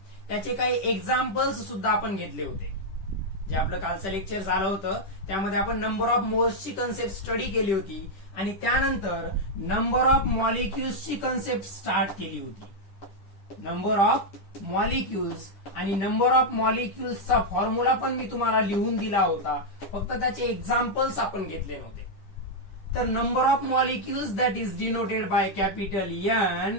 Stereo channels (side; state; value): right; late; 10 ms